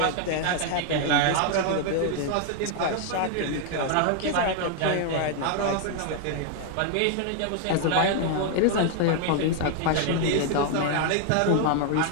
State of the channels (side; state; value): both; different; correlation 0.00